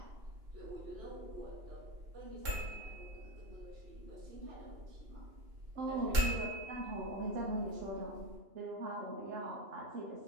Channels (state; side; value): late; left; 2.9 ms